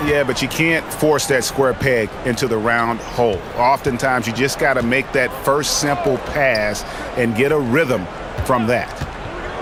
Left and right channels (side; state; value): both; identical; correlation 1.00